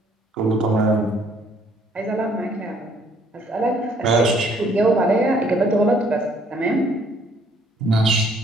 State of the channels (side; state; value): both; normal; correlation 0.63